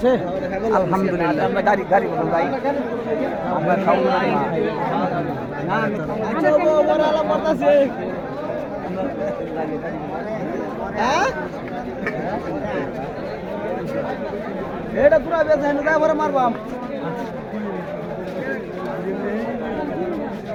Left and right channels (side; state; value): both; identical; correlation 1.00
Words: আলহামদুলিল্লাহ। আমরা গাড়ি গাড়ি বলুন ভাই আমরা খাও না না আচ্ছা ও বড় আলা পড়তাছে হ্যাঁ এটা পুরা বেচা না যাই বড় মারবাম